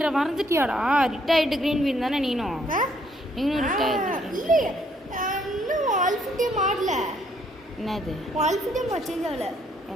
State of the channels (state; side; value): normal; both; correlation 0.68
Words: மறந்துட்டியாடா? ரிட்டையர்ட் கிரீன் பீன் தானே நீனும்? நீனும் ரிட்டையர்ட் இல்ல. இன்னும் ஆல்ஃபிட்டே மாடல. என்னது? ஆல்ஃபிட்டே சேஞ்ச் ஆகல.